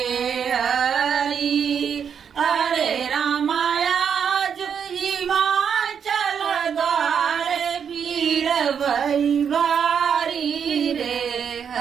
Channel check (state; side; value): quieter; left; 7.4 dB